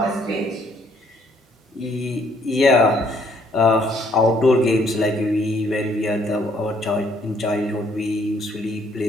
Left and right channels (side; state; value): both; normal; correlation 0.66